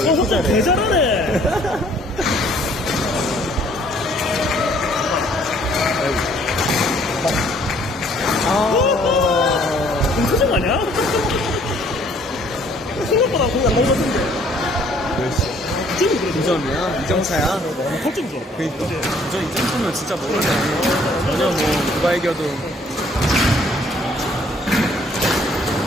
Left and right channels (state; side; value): normal; both; correlation 0.60